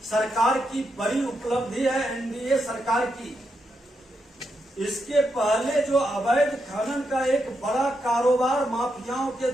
सरकार की बड़ी उपलब्धि है, एनडीए सरकार की। इसके पहले जो अवैध खनन का एक बड़ा कारोबार माफियाओं के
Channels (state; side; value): normal; both; correlation 0.83